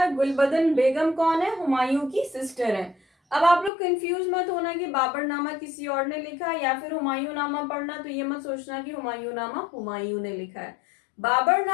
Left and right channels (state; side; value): drops out; right; at 3.7 s